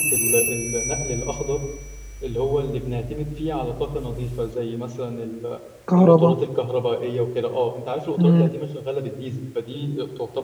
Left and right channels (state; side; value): identical; both; correlation 1.00